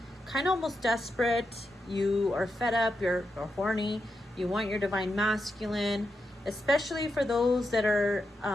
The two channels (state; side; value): normal; both; correlation 0.86